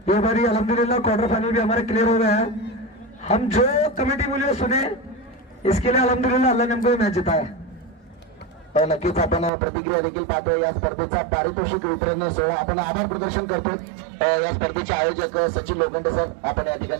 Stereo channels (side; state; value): left; drops out; at 9.5 s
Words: ये बारी अल्हम्दुलिल्लाह क्वार्टर फाइनल भी हमारे क्लियर हो गया है. हम जो कमेटी बोले सुने, इसके लिए अल्हम्दुलिल्लाह अल्लाह ने हमको मैच जिताया. नक्कीच आपण प्रतिक्रिया देखील पाहतोय. या स्पर्धेचा पारितोषिक वितरण सोहळा आपण आभार प्रदर्शन करतोय. या स्पर्धेचे आयोजक सचिन लोखंडे सर, आपण या